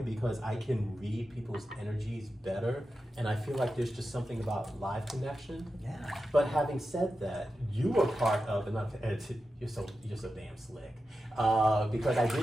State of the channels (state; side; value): normal; both; correlation 0.91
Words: because I can read people's energies better, and I feel like there's just something about live connection. Yeah. But having said that, you were part of, you're so damn slick, because I